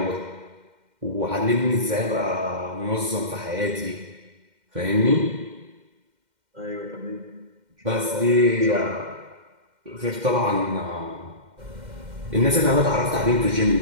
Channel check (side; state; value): left; late; 2.1 ms